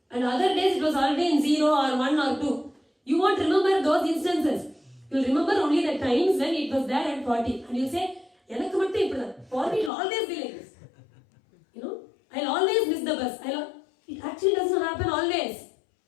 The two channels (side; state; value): right; drops out; at 9.9 s